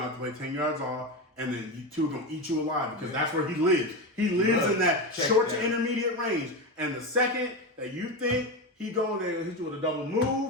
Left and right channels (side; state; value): both; normal; correlation 0.18